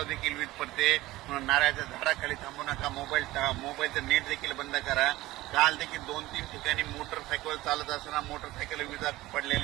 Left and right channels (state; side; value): quieter; left; 17.9 dB